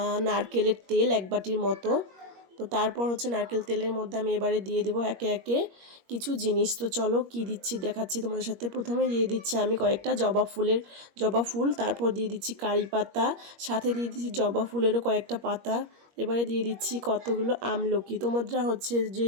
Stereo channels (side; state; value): left; late; 21 ms